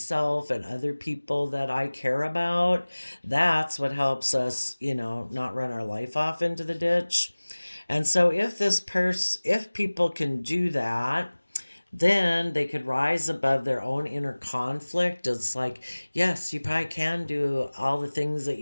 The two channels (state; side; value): inverted; both; correlation -1.00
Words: and other people that I care about. That's what helps us, not run our life off into the ditch. And so if people can do that, then they could rise above their own inner conflict. It's like, yes, you probably can do all the things that